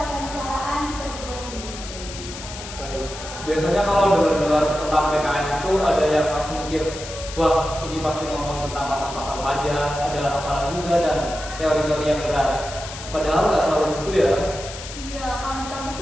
di perguruan tinggi. Baik. Biasanya kalau dengar-dengar tentang PKN itu ada yang langsung mikir, wah ini pasti ngomong tentang pasal-pasal pajak, ada hafalan juga dan teori-teori yang berat. Padahal nggak selalu gitu ya. Iya, kalau di kampus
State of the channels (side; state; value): left; noise; hiss, 11 dB below the sound